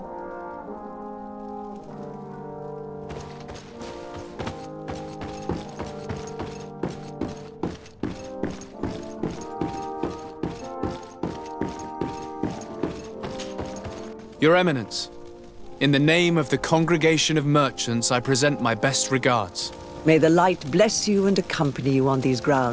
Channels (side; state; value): both; identical; correlation 1.00